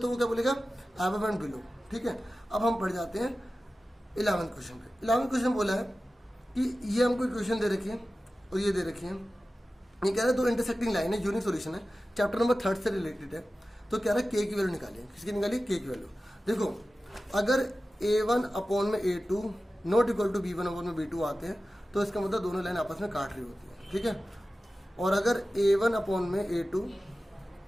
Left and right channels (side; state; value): both; normal; correlation 0.95